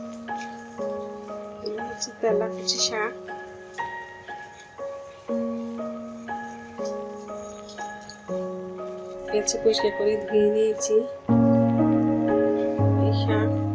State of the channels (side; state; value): both; identical; correlation 1.00